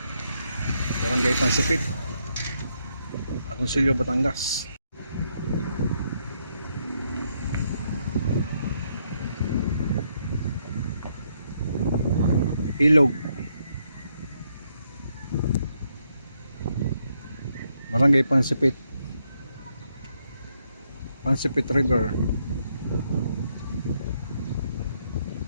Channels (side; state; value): both; inverted; correlation -0.76